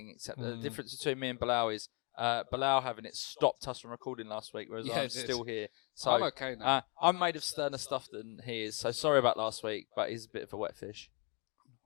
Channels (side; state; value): right; quieter; 31.9 dB